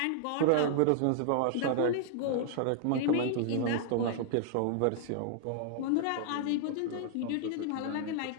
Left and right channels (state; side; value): different; both; correlation -0.01